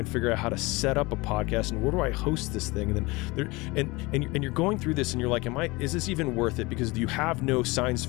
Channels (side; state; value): right; quieter; 23.6 dB